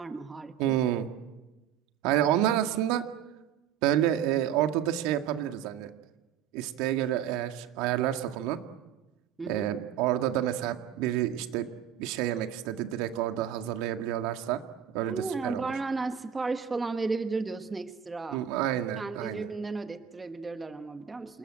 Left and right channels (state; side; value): quieter; left; 9.5 dB